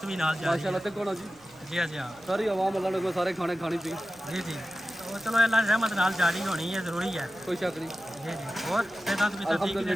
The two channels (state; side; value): noise; right; rumble, 29 dB below the sound